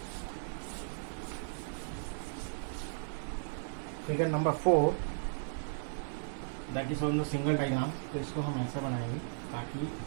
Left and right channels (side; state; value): left; silent; digital silence